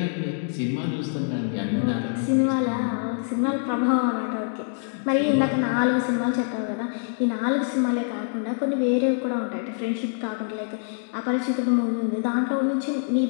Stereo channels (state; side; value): silent; right; 61 dB below the other